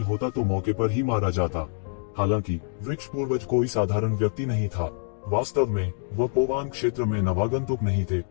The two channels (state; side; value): silent; right; 61 dB below the other